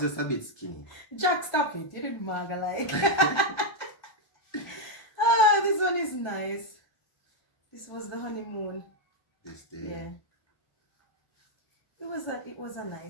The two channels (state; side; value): late; right; 1.3 ms